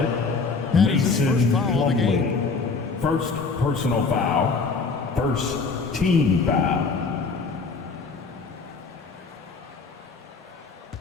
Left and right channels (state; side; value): quieter; right; 4.5 dB